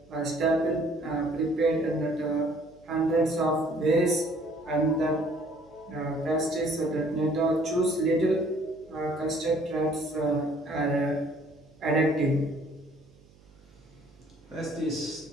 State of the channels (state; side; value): noise; right; hum, 27 dB below the sound